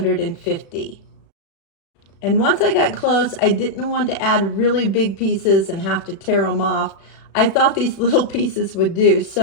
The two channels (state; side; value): late; right; 36 ms